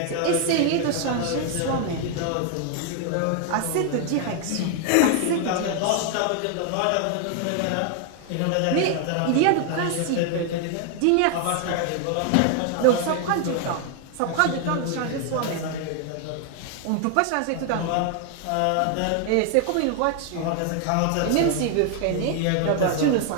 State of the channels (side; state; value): both; different; correlation 0.00